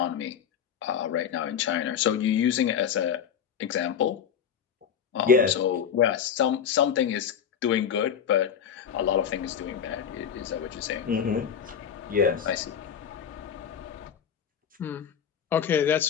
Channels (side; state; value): right; quieter; 8.1 dB